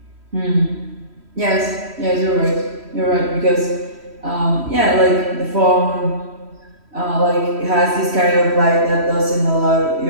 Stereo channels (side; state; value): left; late; 3.1 ms